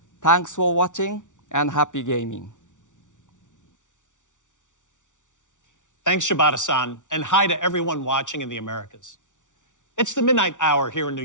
Thanks for watching and happy gaming. Thanks, Shibata-san, and hi to everyone watching in the Americas. It's the midnight hour here in New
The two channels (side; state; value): right; late; 0.87 ms